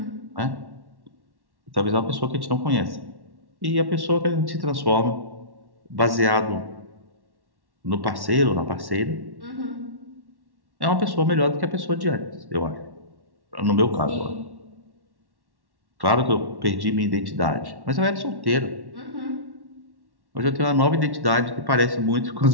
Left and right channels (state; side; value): late; left; 1.1 ms